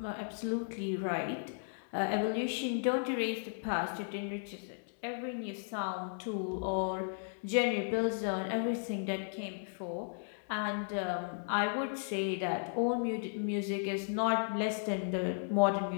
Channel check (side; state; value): right; silent; digital silence